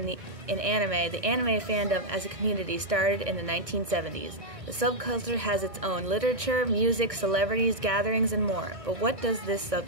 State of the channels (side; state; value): left; late; 1.6 ms